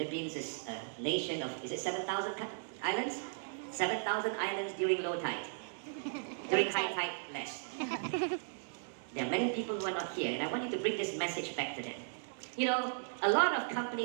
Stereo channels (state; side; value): silent; left; digital silence